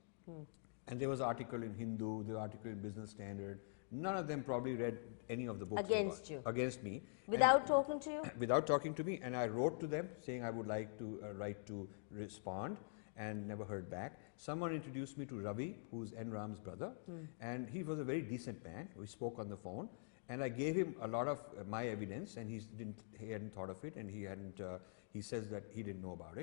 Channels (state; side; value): silent; right; digital silence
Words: And there was an article in Hindu, there was an article in Business Standard. None of them probably read any of the books. Against you. Against me. Without talking to you? Without talking to me. And I wrote to them saying I would like to write to respond and never heard back. Someone introduced me to Ravi, who's N. Ram's brother. And he was a very decent man. We spoke on the phone. And I gave him a lot of my evidence and he hadn't thought of it and he says that he didn't know about